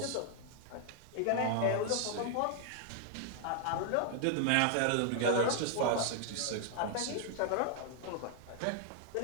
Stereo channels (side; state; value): both; different; correlation 0.00